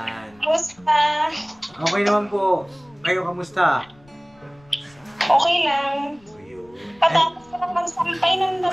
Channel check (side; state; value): left; noise; rumble, 29 dB below the sound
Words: Kamusta? Okay naman po. Kayo, kamusta? Okay lang. Ayun. Patapos ko lang magsampay ng